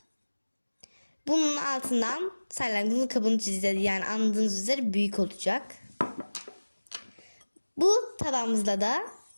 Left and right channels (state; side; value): inverted; both; correlation -1.00